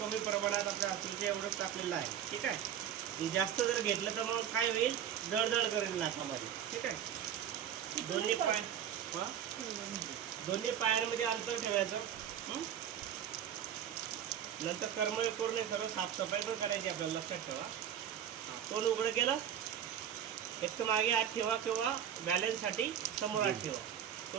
प्रमाणात आपल्या हातीच्या एवढंच टाकलेलं आहे. ठीक आहे. हे जास्त जर घेतलं तर मग काय होईल, जळजळ करेल नाकामध्ये. ठीक आहे. दोन्ही पायांमध्ये अंतर ठेवायचं. नंतर कर्मयोग करून सर्व साफसफाई पण करायची आपल्याला, लक्षात ठेवा. तोंड उघडं केलं, एक तर मागे हात ठेवा किंवा बॅलन्ससाठी समोर हात ठेवा.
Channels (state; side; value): quieter; left; 9.5 dB